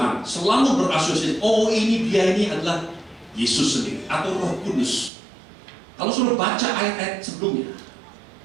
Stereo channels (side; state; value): left; drops out; at 5.1 s